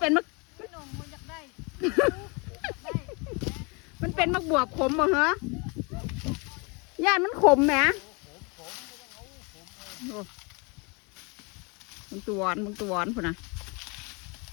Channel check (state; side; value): quieter; right; 30.5 dB